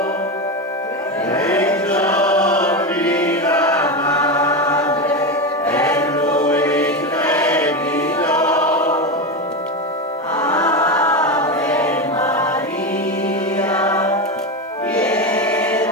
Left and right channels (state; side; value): normal; both; correlation 0.16